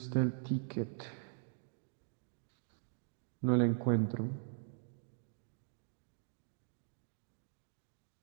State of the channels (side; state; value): left; silent; digital silence